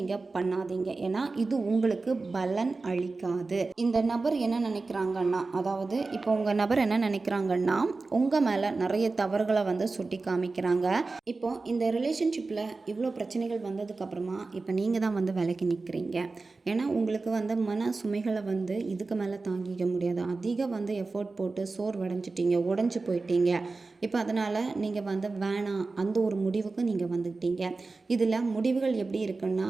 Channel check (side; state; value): left; quieter; 3.8 dB